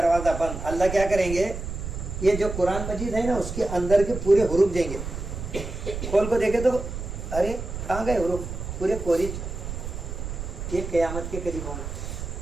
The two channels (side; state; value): right; noise; rumble, 7 dB below the sound